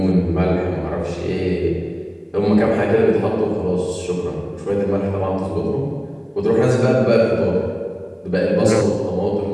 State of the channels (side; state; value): both; identical; correlation 1.00